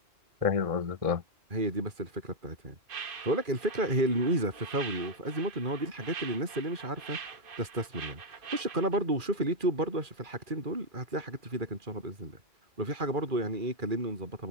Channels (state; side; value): late; left; 2.4 ms